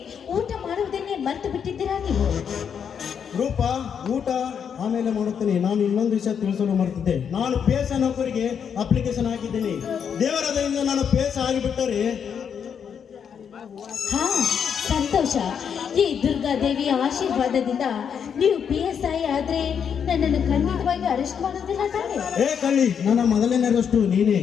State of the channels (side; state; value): right; quieter; 7.5 dB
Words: ಊಟ ಮಾಡುವುದನ್ನೇ ಮರೆತು ಬಿಟ್ಟಿದ್ದೀರಾ ನೀವು? ರೂಪ ಊಟ ಆಮೇಲೆ ಮಾಡುತ್ತೇನೆ. ನಾನು ಇನ್ನೊಂದು ವಿಷಯ ತಿಳಿಸಲು ಮರೆತಿದ್ದೆ. ನಾನು ಪೇಸ ನೌಕರಿಗೆ ಅಪ್ಲಿಕೇಶನ್ ಹಾಕಿದ್ದೇನೆ. ದೇವರ ದಯಿಂದ ನಾನು ಪೇಸ ಆಗಿಬಿಟ್ಟರೆ ಹಾ, ಸಂತೋಷ. ಈ ದುರ್ಗಾದೇವಿಯ ಆಶೀರ್ವಾದದಿಂದ ನೀವು PSI ಆದ್ರೆ ನನ್ನನ್ನು ಖಂಡಿತವಾಗಿ ಅರೆಸ್ಟ್ ಮಾಡೋದಿಲ್ಲ ತಾನೆ? ಏ ಕಳ್ಳಿ, ನನ್ನ ಮೊದಲನೇ ಅರೆಸ್ಟು ನೀನೇ.